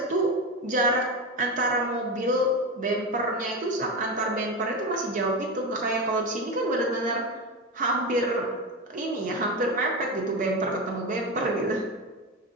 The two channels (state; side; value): normal; both; correlation 0.19